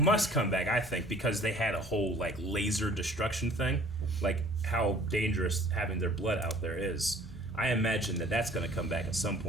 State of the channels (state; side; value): normal; both; correlation 0.52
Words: come back, I think, because they had a whole, like, laser destruction thing, like how dangerous having their blood out there is, I imagine that that's going to come back at some